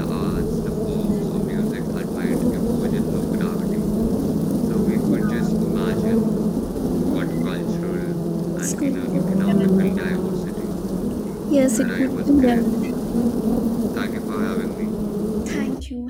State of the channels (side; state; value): both; identical; correlation 1.00